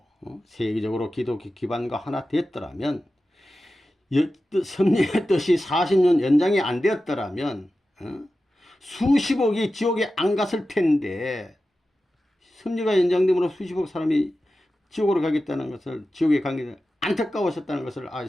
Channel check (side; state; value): both; normal; correlation 0.93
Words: 세계적으로 기독교 기반과 하나 됐더라면, 섭리의 뜻이 40년 연장이 안 되었더라면 수십억이 지옥에 안 갔을 텐데, 섭리가 연장됨으로 수십억 사람이 지옥으로 가겠다는 것을, 지옥에 가게 안타까우셨다는 것을